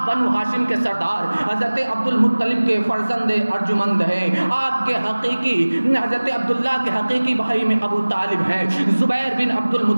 بنو ہاشم کے سردار حضرت عبد المطلب کے فرزند ارجمند ہیں. آپ کے حقیقی حضرت عبداللہ کے حقیقی بھائی میں ابو طالب ہیں, زبیر بن عبد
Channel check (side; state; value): both; inverted; correlation -1.00